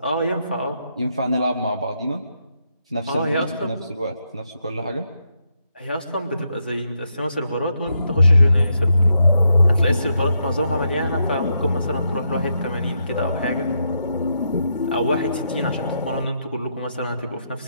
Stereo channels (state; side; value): inverted; both; correlation -0.80